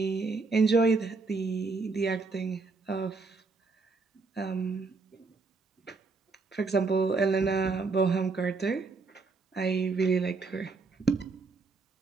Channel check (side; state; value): left; quieter; 4.1 dB